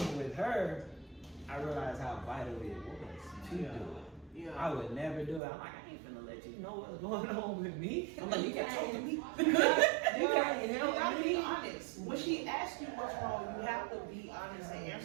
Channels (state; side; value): drops out; left; at 5.4 s